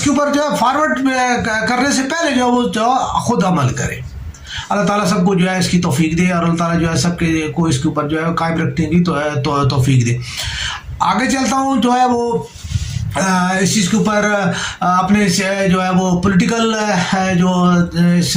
کے اوپر جو ہے فارورڈ کرنے سے پہلے جو ہے وہ خود عمل کریں. اللہ تعالیٰ سب کو جو ہے اس کی توفیق دے، اور اللہ تعالیٰ جو ہے سب کو اس کے اوپر جو ہے قائم رکھنے کی توفیق دے. آگے چلتا ہوں جو ہے وہ اس چیز کے اوپر اپنے جو ہے وہ پولیٹیکل جو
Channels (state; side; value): identical; both; correlation 1.00